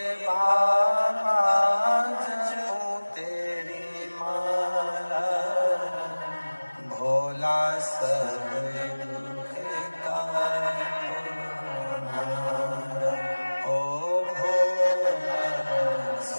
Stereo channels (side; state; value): both; inverted; correlation -1.00